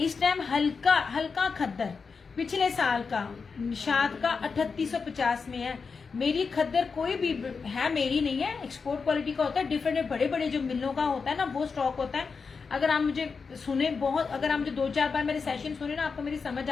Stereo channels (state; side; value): quieter; right; 5.1 dB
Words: टाइम हल्का हल्का खद्दर, पिछले साल का निशात का 3850 में है। मेरी खद्दर कोई भी है, मेरी नहीं है, एक्सपोर्ट क्वालिटी का होता है। डिफरेंट बड़े बड़े जो मिलों का होता है ना, वो स्टॉक होता है। अगर आप मुझे सुने बहुत, अगर आप मुझे 2-4 बार मेरे सेशन सुने ना, आपको मेरी समझ